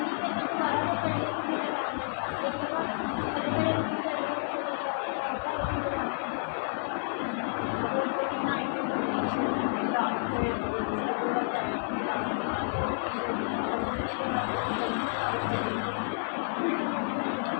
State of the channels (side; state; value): right; silent; digital silence